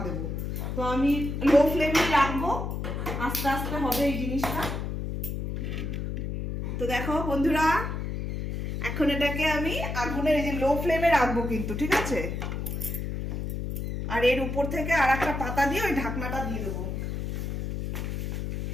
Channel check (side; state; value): left; noise; hum, 3 dB below the sound